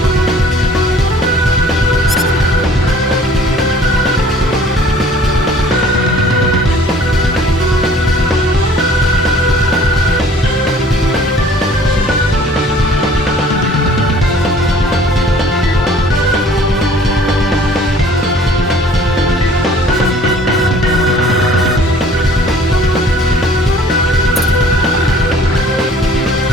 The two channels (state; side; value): normal; both; correlation 0.52